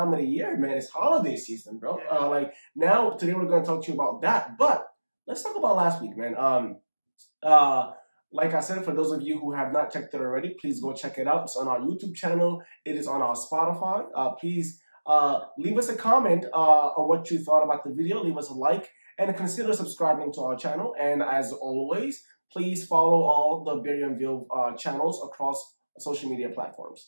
of the year, man. It's holiday season, bro. Now today we're going to talk to you about that, but let's talk about last week, man. Like I said, for those of you who have not checked it already, please go check it out. It's on our YouTube channel. It is on our Spotify. Please leave us a comment on what you thought about the video. Leave us a like and consider subscribing to our channel. And as always, please follow all the Barry and Vilv channels across social media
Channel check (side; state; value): both; inverted; correlation -1.00